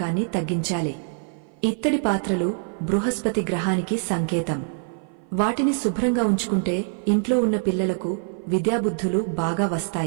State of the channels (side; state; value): left; silent; 56 dB below the other